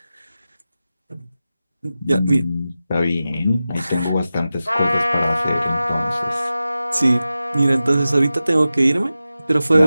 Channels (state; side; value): inverted; both; correlation -0.94